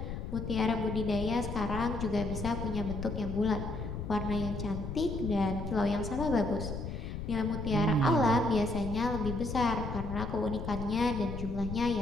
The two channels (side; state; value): left; noise; rumble, 6 dB below the sound